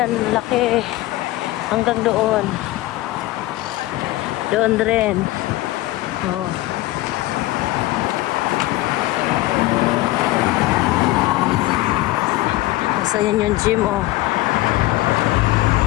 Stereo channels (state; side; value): quieter; right; 17.6 dB